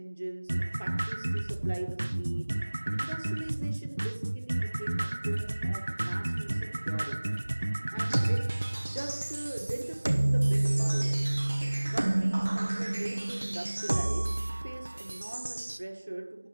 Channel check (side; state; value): both; inverted; correlation -1.00